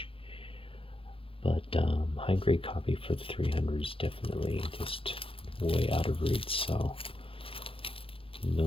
But high grade copy for the 300 is definitely just way out of reach, so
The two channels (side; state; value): right; late; 0.26 ms